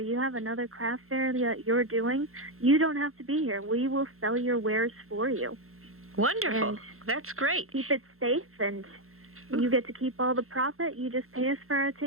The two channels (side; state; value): left; late; 0.62 ms